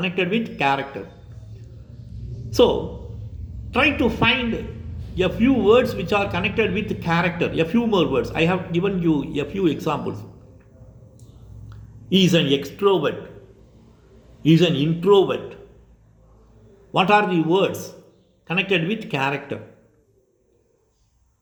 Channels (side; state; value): both; identical; correlation 1.00